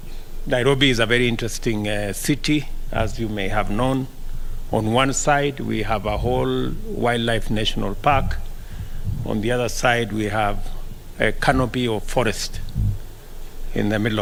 Nairobi is a very interesting city, as you may have known. On one side, we have a whole wildlife national park. On the other side, we have a canopy of forest in the middle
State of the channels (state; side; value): identical; both; correlation 1.00